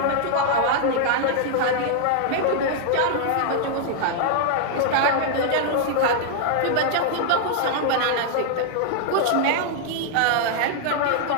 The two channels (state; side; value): different; both; correlation -0.01